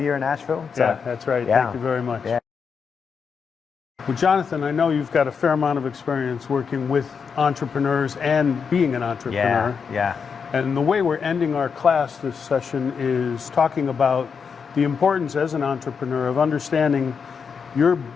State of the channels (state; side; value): quieter; right; 6.1 dB